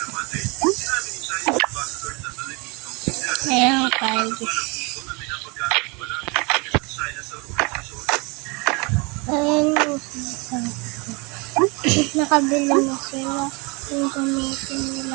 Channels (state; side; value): quieter; left; 29.2 dB